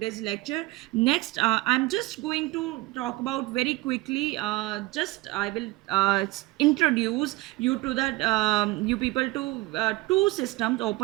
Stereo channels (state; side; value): quieter; left; 20.3 dB